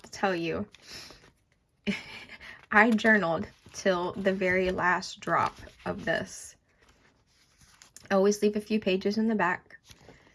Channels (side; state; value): both; identical; correlation 1.00